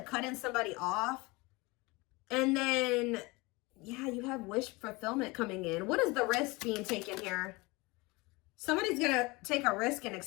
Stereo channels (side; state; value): right; quieter; 24.5 dB